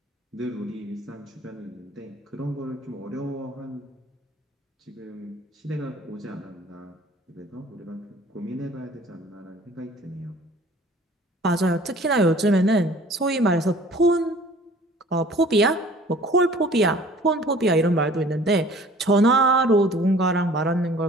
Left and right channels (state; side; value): normal; both; correlation 0.50